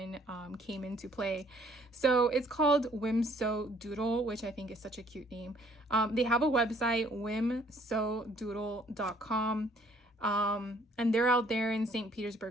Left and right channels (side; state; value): both; normal; correlation 0.61